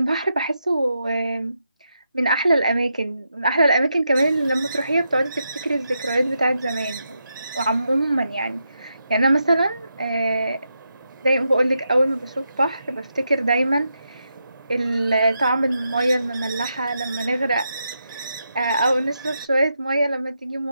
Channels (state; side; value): inverted; both; correlation -0.84